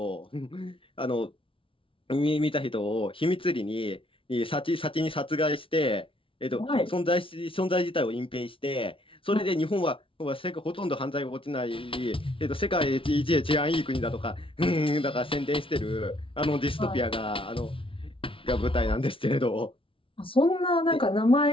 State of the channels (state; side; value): late; right; 0.25 ms